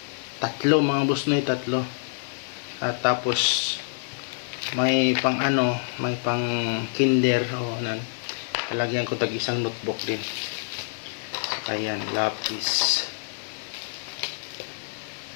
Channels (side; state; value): right; silent; digital silence